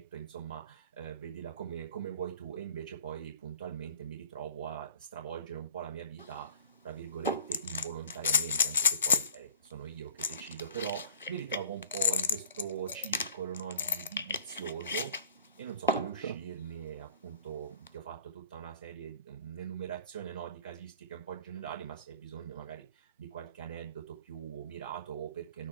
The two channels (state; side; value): inverted; both; correlation -0.48